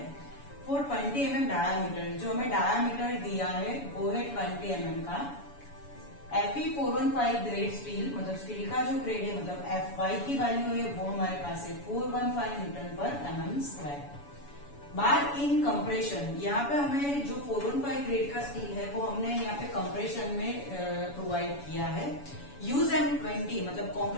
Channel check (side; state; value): right; late; 7.0 ms